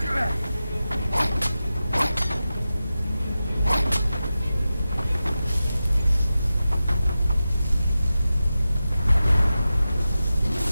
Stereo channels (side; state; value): both; inverted; correlation -0.93